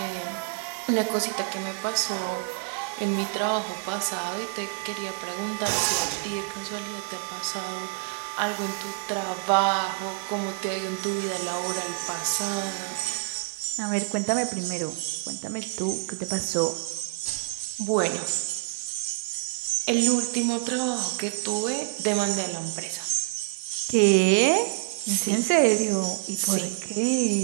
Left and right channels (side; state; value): left; quieter; 31.9 dB